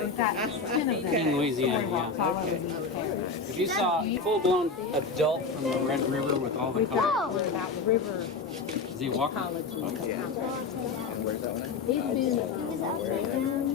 we've got 10 of them. In Louisiana, yeah. Okay. If you saw a full-blown adult from the Red River with all the colors, About the river is he walking? ecology. He was upside down,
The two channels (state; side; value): quieter; right; 4.5 dB